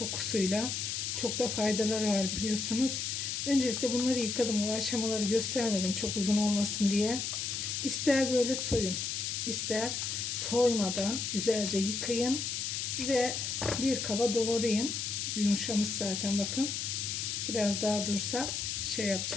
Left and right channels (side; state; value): left; noise; hiss, 2 dB below the sound